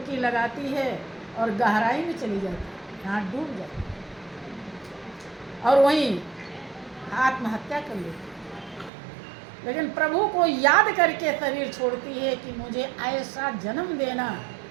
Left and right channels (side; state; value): left; drops out; at 8.9 s